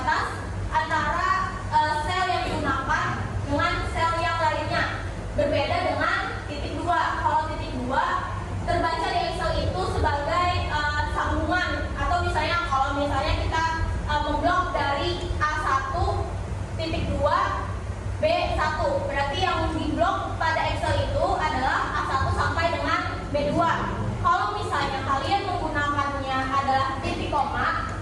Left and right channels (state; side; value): identical; both; correlation 1.00